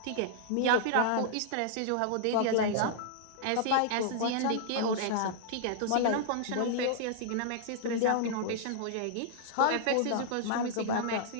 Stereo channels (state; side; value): different; both; correlation -0.01